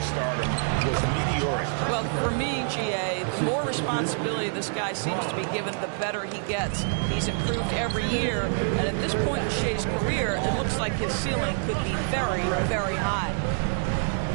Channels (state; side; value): silent; left; 59 dB below the other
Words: stardom was meteoric. Well, for me, GA, the more responsibility this guy seems to be given, the better he gets. He's improved every year, and at this point in Shai's career, it looks like his ceiling could be very, very high.